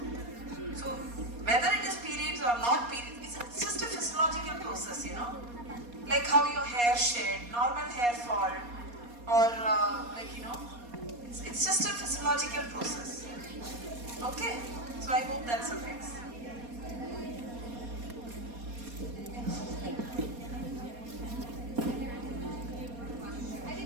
So, whether it is periods or not periods, it's just a physiological process, like how your hair shed, normal hair fall, or it's just a physiological process. Okay, so I hope that suffices.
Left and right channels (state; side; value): late; left; 4.2 ms